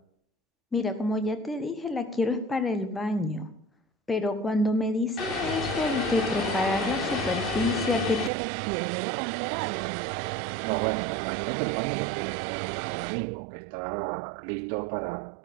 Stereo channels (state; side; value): drops out; left; at 8.3 s